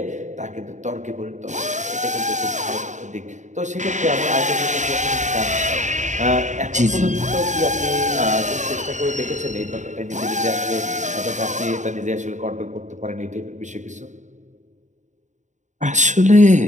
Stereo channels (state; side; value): late; left; 0.35 ms